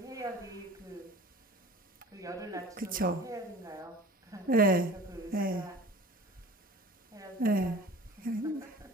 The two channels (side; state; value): both; normal; correlation 0.42